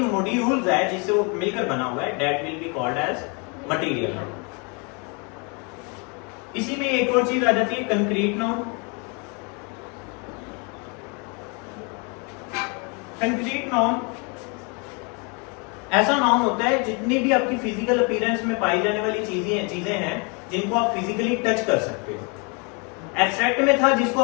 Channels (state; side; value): quieter; right; 33.1 dB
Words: मॉड्यूल्स है जिससे वो मिलकर बना हुआ है, that will be called as material noun. इसी में एक और चीज आ जाती है, कंक्रीट नाउन। कंक्रीट नाउन ऐसा नाउन होता है जितनी भी आपकी फिजिकल अपीयरेंस में पाई जाने वाली चीजें हैं जिनको आप फिजिकली टच कर सकते हो। एब्स्ट्रैक्ट में था जिसको